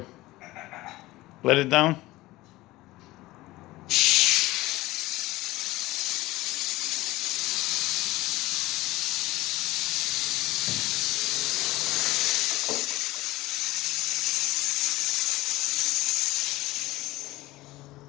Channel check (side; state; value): right; quieter; 18.7 dB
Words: Let it down?